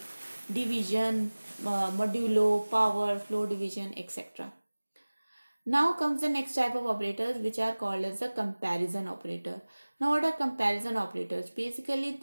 division, modulo, power, flow division, etc. Now comes the next type of operators, which are called as the comparison operator. Now what are comparison operators? Basically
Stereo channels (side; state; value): both; inverted; correlation -1.00